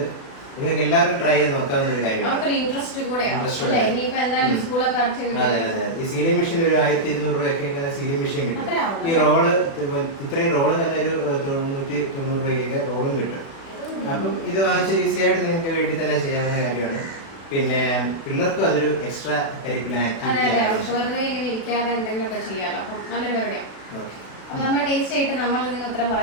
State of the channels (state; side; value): late; right; 36 ms